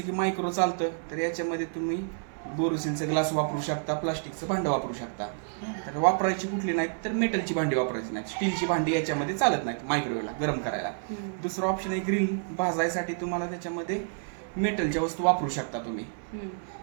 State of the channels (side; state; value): left; silent; 58 dB below the other